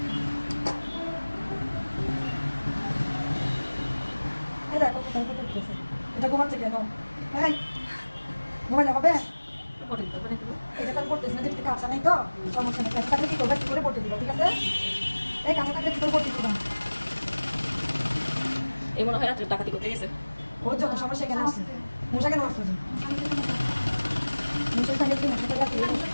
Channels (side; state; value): both; inverted; correlation -1.00